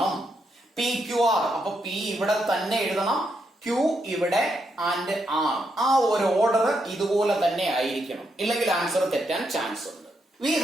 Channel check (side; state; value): both; normal; correlation 0.80